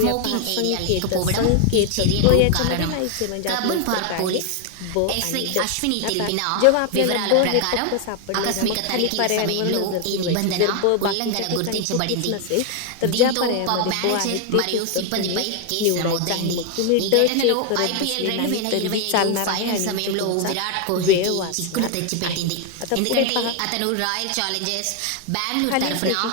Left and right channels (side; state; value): both; different; correlation 0.00